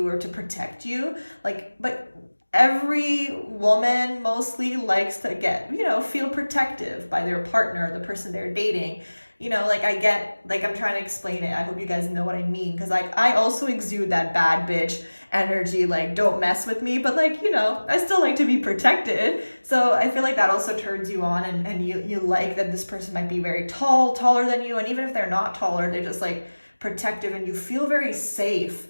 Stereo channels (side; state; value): both; inverted; correlation -1.00